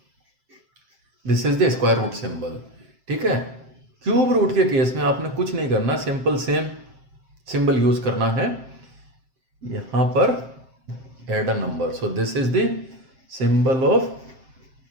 this is the square root symbol, ठीक है। क्यूब रूट के केस में आपने कुछ नहीं करना, सिंपल सेम सिंबल यूज करना है, यहां पर add a number, so this is the symbol of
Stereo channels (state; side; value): late; left; 7.6 ms